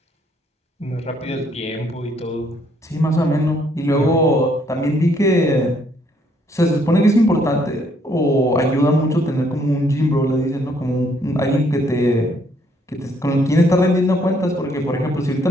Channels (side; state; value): both; normal; correlation 0.68